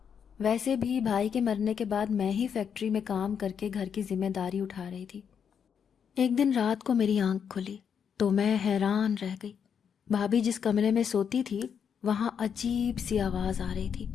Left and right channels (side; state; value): right; quieter; 7.4 dB